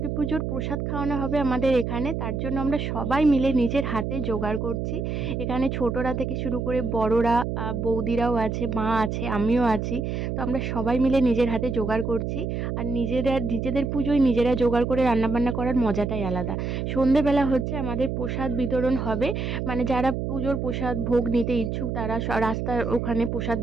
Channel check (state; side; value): noise; right; hum, 2 dB below the sound